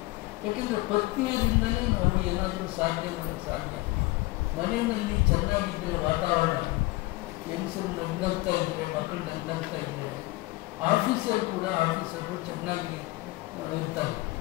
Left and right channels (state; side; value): quieter; right; 20.9 dB